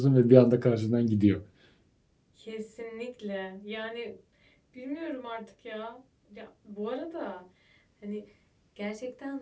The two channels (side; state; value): both; identical; correlation 1.00